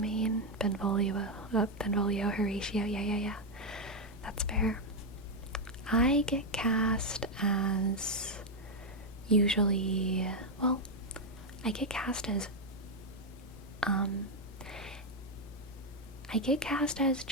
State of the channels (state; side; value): normal; both; correlation 0.03